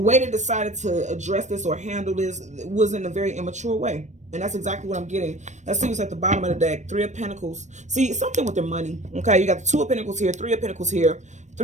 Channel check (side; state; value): left; late; 0.34 ms